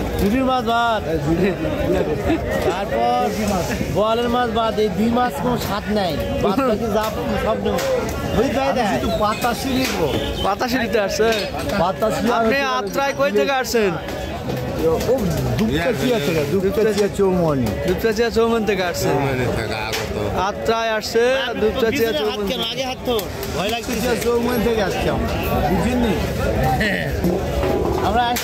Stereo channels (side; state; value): both; identical; correlation 1.00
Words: ঝুড়ির মাছ বাদ, তারপর বোয়ালের মাছ বাদ। এই দুই মাছ কোনো স্বাদ নাই, বাদ বাকি যা সব নেব। পাতাশি নিবো। পাতাশি নিতে আসছে? আপনি আত্রায় কই থেকে আসছেন? দুপচাচিয়া চৌমনি। দুপচাচিয়া চৌমনি থেকে আসছে। আত্রায় আসছে দুপচাচিয়া চৌমনি। আগে হাত তো ভয় লাগছে। চৌমনি থেকে আসছি আমরা, বুঝিনি? আমরা